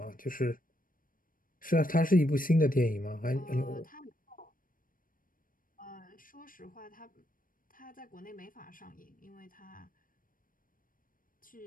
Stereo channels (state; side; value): late; right; 0.40 ms